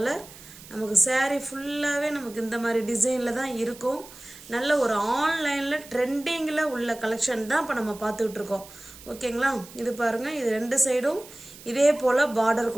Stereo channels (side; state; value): right; noise; hiss, 18 dB below the sound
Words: நமக்கு saree ஃபுல்லாகவே நமக்கு இந்த மாதிரி டிசைனில் தான் இருக்கும். நல்ல ஒரு ஆன்லைனில் ட்ரெண்டிங்கில் உள்ள கலெக்ஷன் தான் இப்போ நம்ம பார்த்துக்கிட்டு இருக்கோம். ஓகேங்களா? இது பாருங்கள், இது ரெண்டு சைடும் இதே போல் பார்டர்